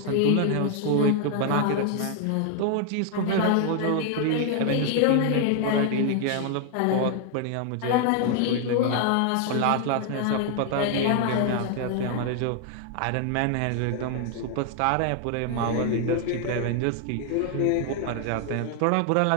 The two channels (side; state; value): both; different; correlation 0.00